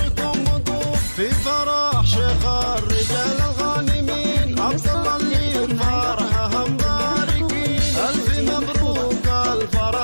وقوف، في فرح شيخ الرجال الغانمين، عبد الله اللي فرحه مباركين. ألف مبروك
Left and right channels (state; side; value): inverted; both; correlation -1.00